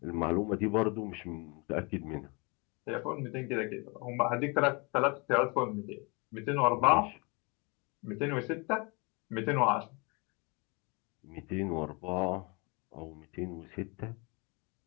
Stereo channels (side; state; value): right; quieter; 29.9 dB